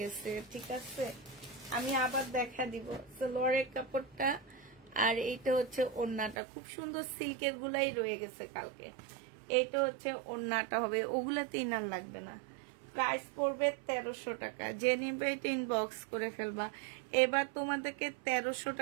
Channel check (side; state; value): left; drops out; at 6.4 s